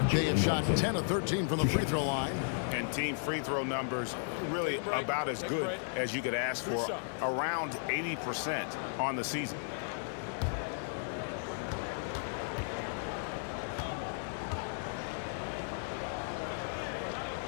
they have shot 10 of 13 from the free throw line. And team free throw numbers really about as good as you could ask for. Around 80% on the season.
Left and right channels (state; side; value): silent; right; digital silence